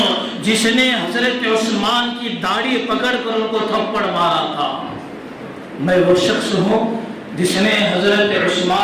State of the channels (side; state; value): both; identical; correlation 1.00